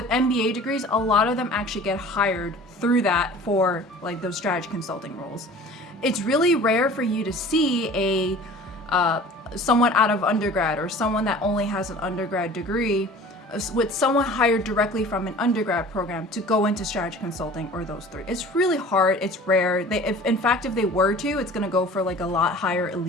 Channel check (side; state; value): both; normal; correlation 0.44